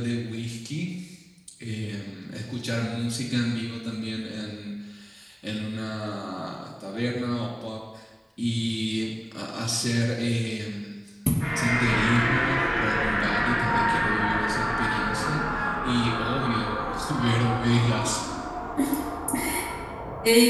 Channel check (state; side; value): identical; both; correlation 1.00